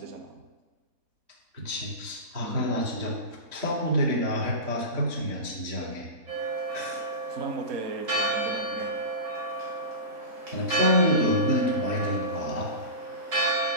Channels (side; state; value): left; late; 3.7 ms